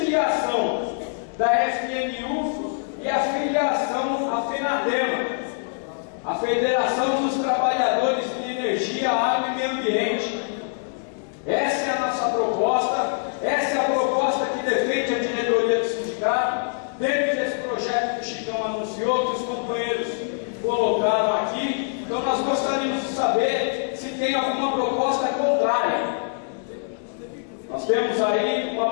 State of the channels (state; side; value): silent; right; digital silence